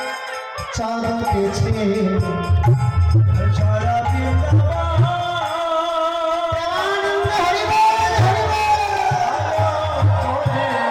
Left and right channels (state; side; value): identical; both; correlation 1.00